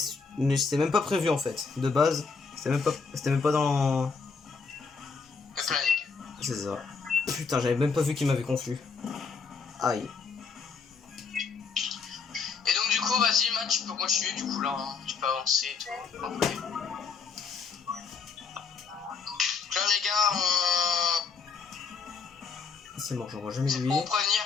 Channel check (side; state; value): right; quieter; 5.2 dB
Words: c'était même pas prévu en fait. De base, c'était même pas dans... Le planning. C'est ça. Putain, j'avais même pas vu qu'il m'avait confus. Aïe. Et donc du coup, vas-y Matt, tu peux continuer du coup là, hein. Tu peux avancer et tout. Okay. Là les gars, C'est mort, j'en vois jamais c'est lui. pour